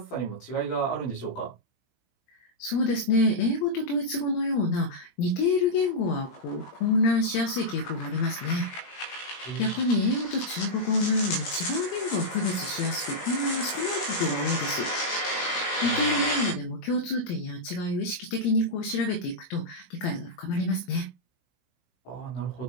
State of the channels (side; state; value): right; late; 17 ms